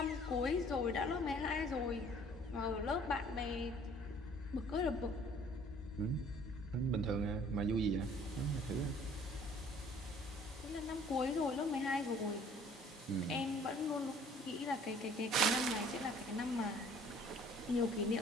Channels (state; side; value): normal; both; correlation 0.55